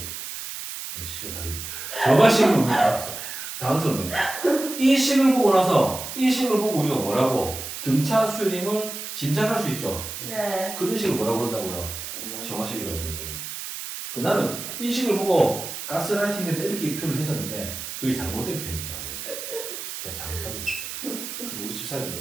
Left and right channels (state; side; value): noise; right; hiss, 8 dB below the sound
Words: 시간 다 됐네. 저맛식은 뭡니까? 당황스럽네요. 이 식을 보고 나서 이 식을 보고 우리가 뭐라고 등차 수렴을 짐작할 수 있죠. 네. 그런 식을 뭐라고 그런다고요? 저맛식이라고 그런다고요. 그 나는 이 식을 보고 가스라이팅인데 이렇게 표현을 했었는데 그게 잘못된 표현이더라고요. 제가 잘못한 거죠. 그래서 우리 집사님들